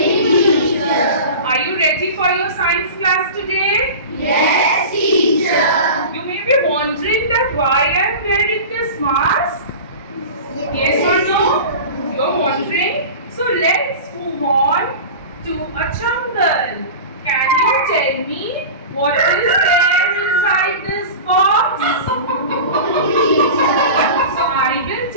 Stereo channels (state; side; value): inverted; both; correlation -0.33